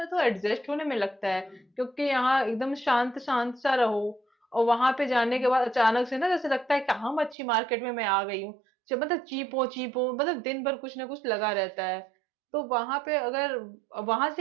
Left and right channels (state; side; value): drops out; left; at 7.4 s